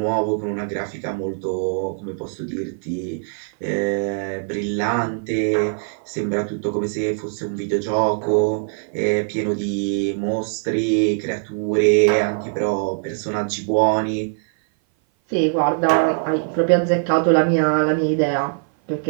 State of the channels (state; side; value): silent; left; 57 dB below the other